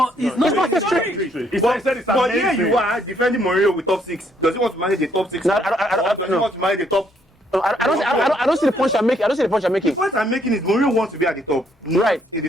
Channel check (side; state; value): both; normal; correlation 0.69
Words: it's not winning history. But here you are defending Mourinho with top 6. Does he want to manage the top 6 or does he want to manage the top? I don't see the point I'm making. The point I'm making is Mourinho wants to be at the top, not in the